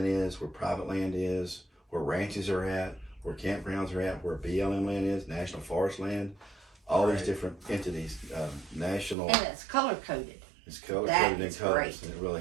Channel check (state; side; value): drops out; left; at 9.2 s